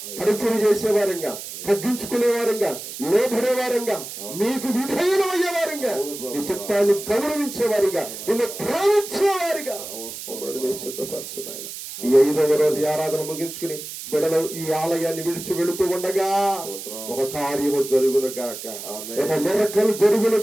పరిచయం చేసేవారంగా, తగ్గించుకునేవారంగా, లోబడేవారంగా, మీకు విధేయులయ్యేవారంగా, నీ చిత్తాన్ని గౌరవించేవారిగా, నిన్ను ప్రేమించేవారిగా సిద్ధపరచున్నాయన. ఈ 5వ రోజు ఆరాధన ముగించుకుని బిడ్డలు ఈ ఆలయాన్ని విడిచి వెళుతూ ఉండగా ఒక కార్యము జరుగును గాక, ఒక మిరకలు జరుగును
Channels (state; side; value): noise; right; hiss, 10 dB below the sound